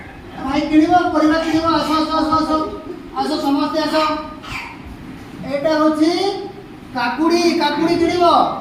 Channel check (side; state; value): both; identical; correlation 1.00